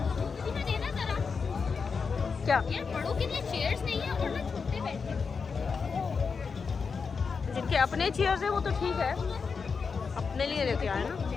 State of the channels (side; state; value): right; quieter; 5.3 dB